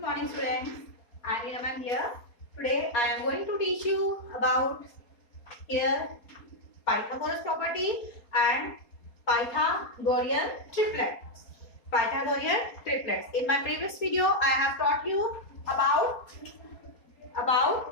morning students. I am Neena ma'am here. Today I am going to teach you about here Pythagoras property and Pythagorean triplets. Pythagorean triplets. In my previous video I have taught you about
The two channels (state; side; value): late; right; 4.3 ms